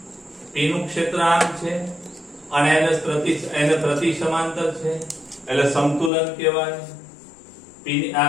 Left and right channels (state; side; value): drops out; right; at 6.1 s